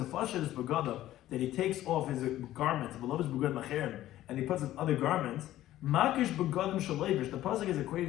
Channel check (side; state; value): right; quieter; 14.1 dB